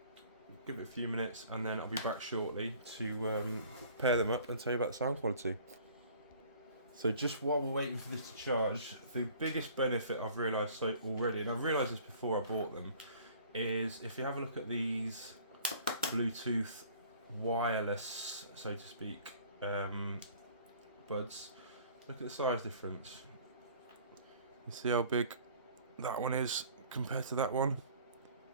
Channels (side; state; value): both; inverted; correlation -0.51